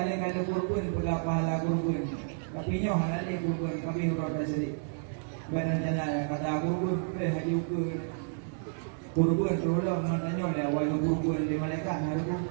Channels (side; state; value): left; silent; 57 dB below the other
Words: ada kurban, pula pahala kurban. Tapi nyoh halal kurban, kami huruf dasari. Badan jana kata kurban, haji ukur. Kurban tolong matanya dah awal kurban di malaikat harus.